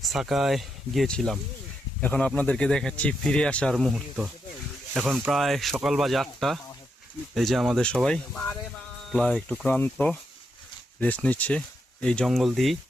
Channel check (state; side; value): normal; both; correlation 0.82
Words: সাকায় গিয়েছিলাম। এখন আপনাদেরকে দেখাচ্ছি ফিরে আসার মুহূর্ত। এখন প্রায় সকাল বাজে 8টা। এই যে আমাদের সবাই প্রায় একটু ক্লান্ত, রেস্ট নিচ্ছে। এই জঙ্গল দিয়েই